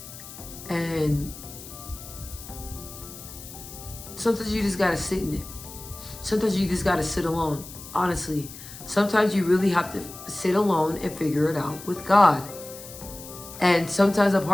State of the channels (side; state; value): left; noise; hiss, 14 dB below the sound